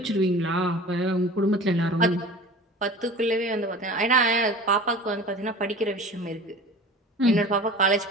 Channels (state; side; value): normal; both; correlation 0.39